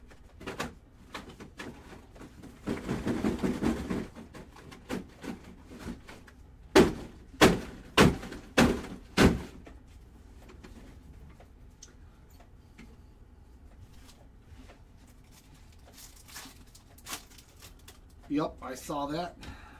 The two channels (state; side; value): identical; both; correlation 1.00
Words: Yep, I saw that.